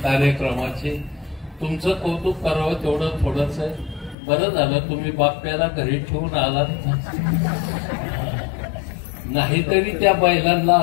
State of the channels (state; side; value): drops out; right; at 4.2 s